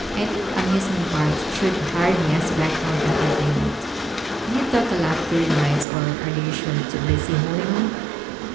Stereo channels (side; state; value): left; drops out; at 5.9 s